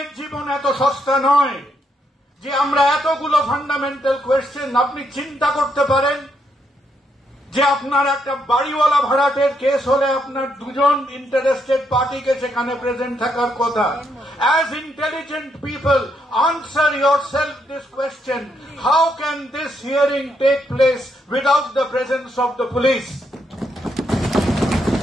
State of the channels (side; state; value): both; normal; correlation 0.77